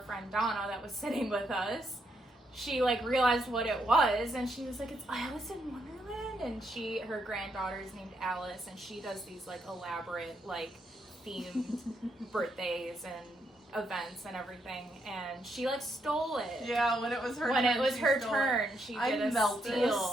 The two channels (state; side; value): normal; both; correlation 0.78